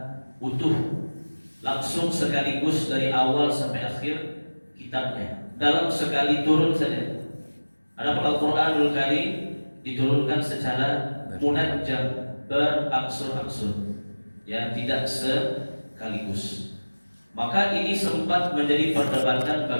utuh, langsung sekaligus dari awal sampai akhir kitabnya dalam sekali turun saja. Adapun Al-Quranul Karim diturunkan secara munajjam, berangsur-angsur, ya, tidak sekaligus. Maka ini sempat menjadi perdebatan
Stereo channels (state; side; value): inverted; both; correlation -1.00